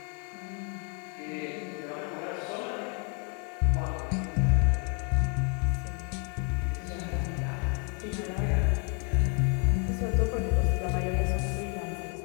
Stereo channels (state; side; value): quieter; right; 37.5 dB